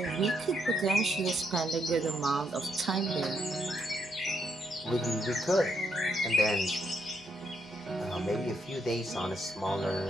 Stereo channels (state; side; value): normal; both; correlation 0.76